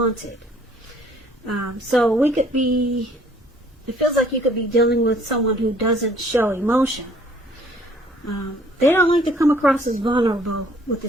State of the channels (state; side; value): normal; both; correlation 0.59